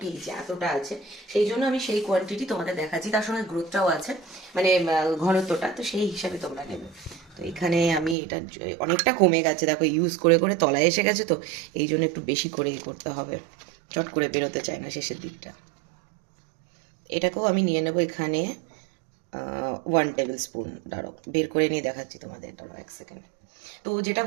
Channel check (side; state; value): left; drops out; at 8.2 s